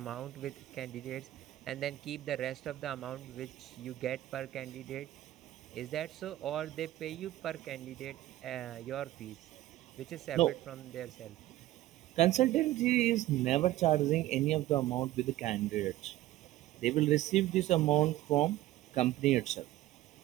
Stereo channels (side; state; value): left; quieter; 15.3 dB